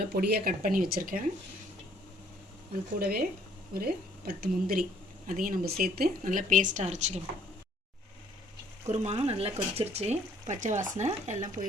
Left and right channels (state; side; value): normal; both; correlation 0.61